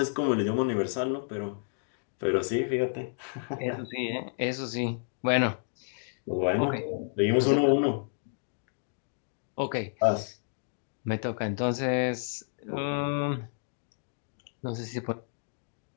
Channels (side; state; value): right; silent; digital silence